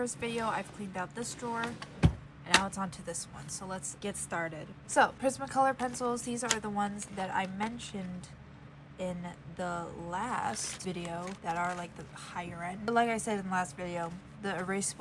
video, I've cleaned out this drawer, and now it's on to this one. So let's get started. So, Prismacolor pencils, these are the ones that I mentioned in the last video that are like the higher end. But like I said in the last video, the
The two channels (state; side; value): identical; both; correlation 1.00